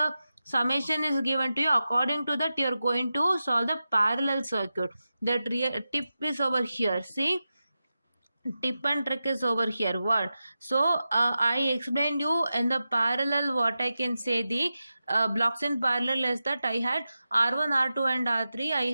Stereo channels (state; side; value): inverted; both; correlation -0.92